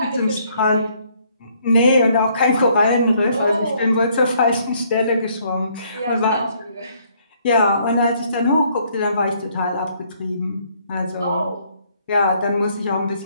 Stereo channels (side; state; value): both; inverted; correlation -0.66